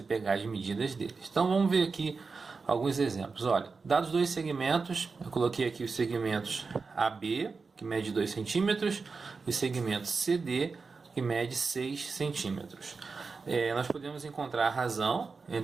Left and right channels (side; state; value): left; quieter; 4.6 dB